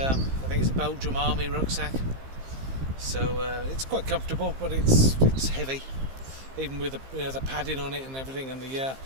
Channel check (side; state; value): left; late; 15 ms